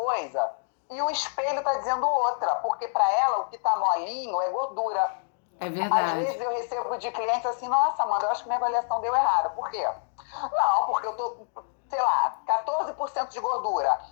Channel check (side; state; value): right; silent; digital silence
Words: e o espelho está dizendo outra, porque para ela o que está molinho é gordura. É verdade. Às vezes eu recebo de clientes assim, nossa, Amanda, eu acho que minha avaliação deu errado. Por quê? Não, porque eu tô com, 14% de gordura,